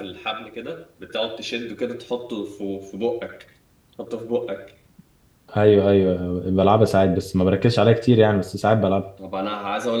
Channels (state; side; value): identical; both; correlation 1.00